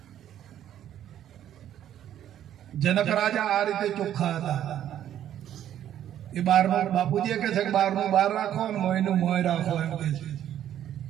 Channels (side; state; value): left; quieter; 11.0 dB